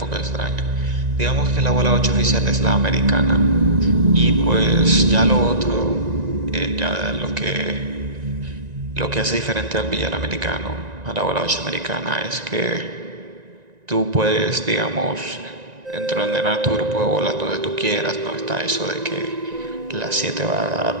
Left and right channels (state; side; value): late; left; 1.9 ms